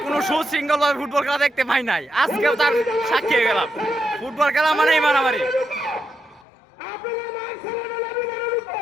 কোন সুশৃঙ্খল ভাবে ফুটবল খেলা দেখতে পাই নাই, আজকেও তার সাক্ষী হয়ে গেলাম। ফুটবল খেলা মানেই মারামারি।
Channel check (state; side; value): drops out; right; at 6.5 s